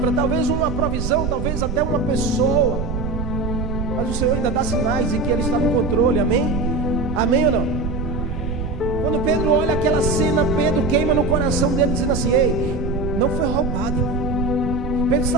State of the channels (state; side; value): noise; right; rumble, 4 dB below the sound